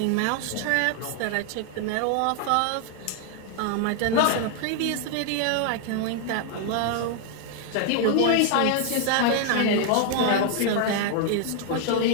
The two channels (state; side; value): different; both; correlation 0.00